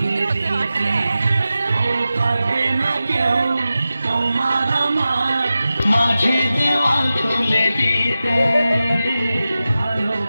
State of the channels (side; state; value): both; inverted; correlation -0.94